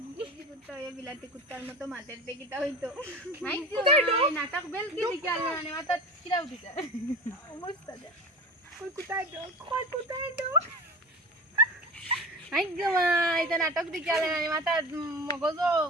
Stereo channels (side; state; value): both; normal; correlation 0.32